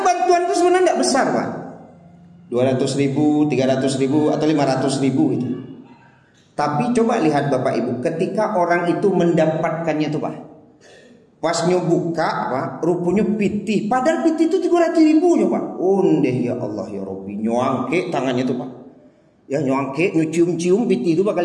bantuan itu sebenarnya tidak besar Pak, 200.000, 300.000 atau 500.000 itu. Tapi coba lihat Bapak Ibu, ketika orang itu mendapatkannya tuh Pak, pas nyobuka Pak, rupanya piti, padahal piti itu 300.000 Pak. Ondeh ya Allah ya Rabbi, nyuangke tangannya tuh Pak, ya nyuangke, nyucium-cium piti itu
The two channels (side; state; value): both; identical; correlation 1.00